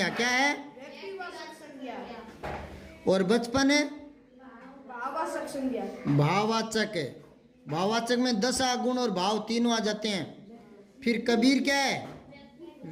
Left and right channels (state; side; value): identical; both; correlation 1.00